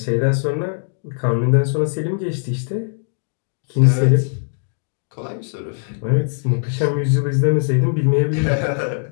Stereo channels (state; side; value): silent; right; digital silence